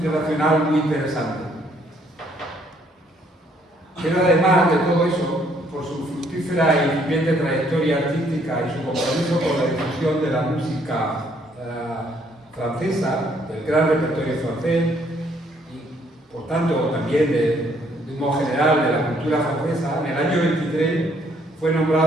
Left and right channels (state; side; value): normal; both; correlation 0.66